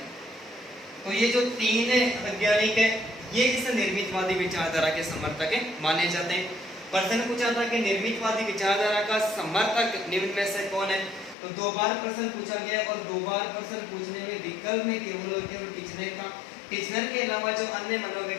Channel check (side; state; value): right; drops out; at 11.4 s